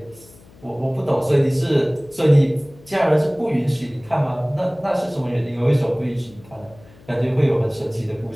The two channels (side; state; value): left; noise; hum, 25 dB below the sound